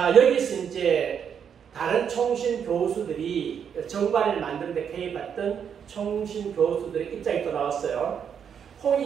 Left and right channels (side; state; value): left; quieter; 7.7 dB